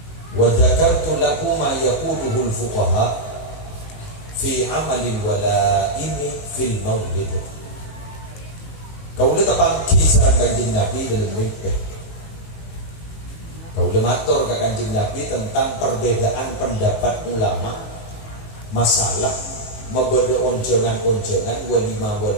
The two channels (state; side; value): late; right; 19 ms